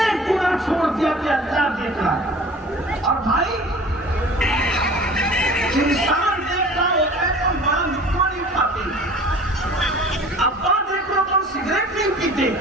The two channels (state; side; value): normal; both; correlation 0.44